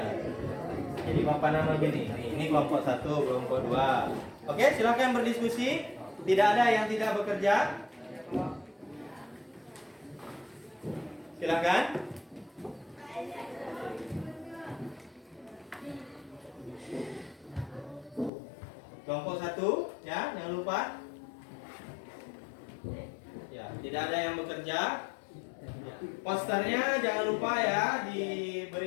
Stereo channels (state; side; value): drops out; right; at 18.3 s